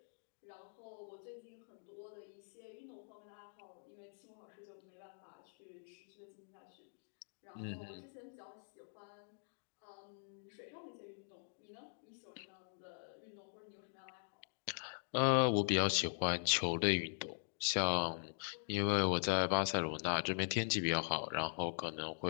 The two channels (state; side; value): silent; right; digital silence